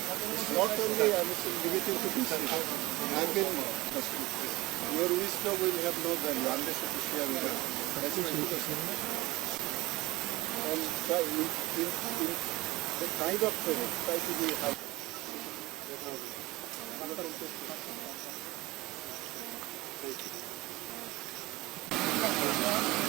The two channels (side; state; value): left; quieter; 20.2 dB